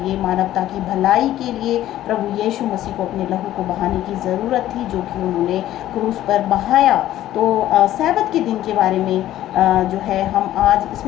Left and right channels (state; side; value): quieter; right; 13.4 dB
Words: मानवता की भलाई के लिए प्रभु यीशु मसीह को अपने लहू को बहाने की ज़रूरत थी, जो कि उन्होंने क्रूस पर बहाया। तो सैबत के दिन के बारे में जो है हम आज